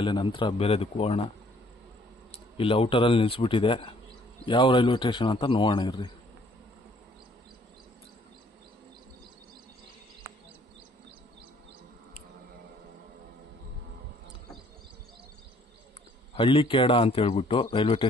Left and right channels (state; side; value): normal; both; correlation 0.61